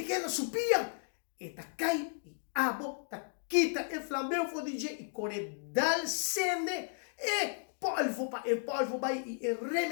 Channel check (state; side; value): silent; right; digital silence